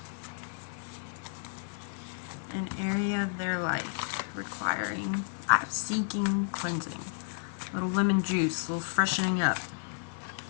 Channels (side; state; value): right; silent; digital silence